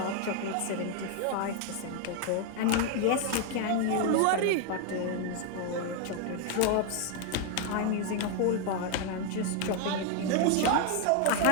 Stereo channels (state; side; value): different; both; correlation 0.01